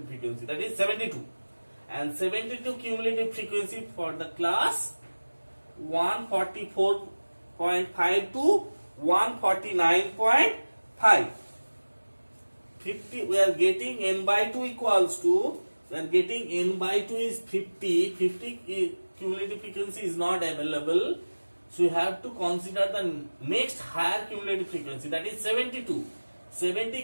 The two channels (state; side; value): inverted; both; correlation -1.00